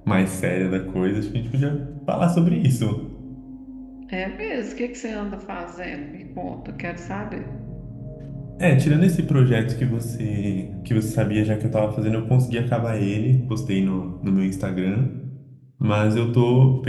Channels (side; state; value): both; identical; correlation 1.00